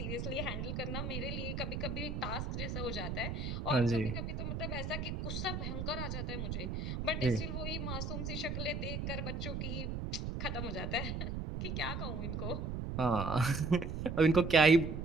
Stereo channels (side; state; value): right; noise; rumble, 3 dB below the sound